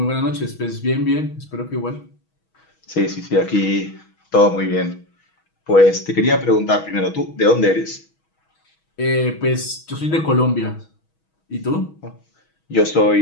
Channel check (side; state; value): right; late; 6.2 ms